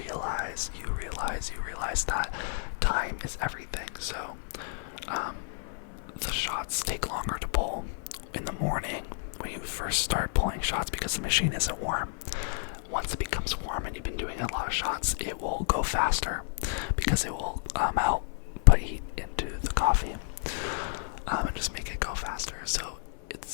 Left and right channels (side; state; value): right; silent; 57 dB below the other